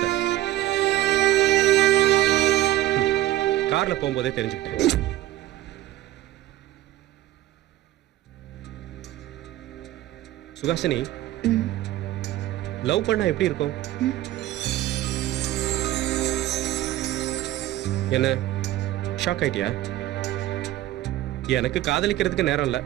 கார்ல போகும்போதே தெரிஞ்சுக்கிட்டேன். சுகாசினி, லவ் பண்ணா எப்படி இருக்கும்? என்ன ஷாக் ஆயிட்டியா? எனக்கு காதலிக்கிறதுக்கு நேரம் இல்ல.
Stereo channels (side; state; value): left; quieter; 14.8 dB